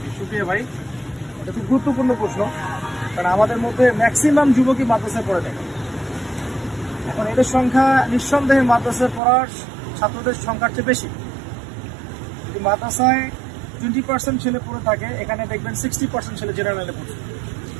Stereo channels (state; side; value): drops out; left; at 9.2 s